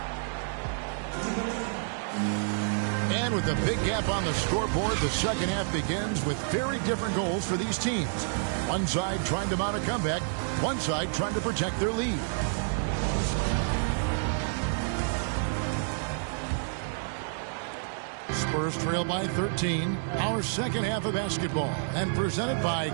And with a big gap on the scoreboard, the second half begins with very different goals for these teams. One side trying to mount a comeback, one side trying to protect their lead. Spurs trail by 13. Our second half of basketball, and presented by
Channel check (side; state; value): left; silent; digital silence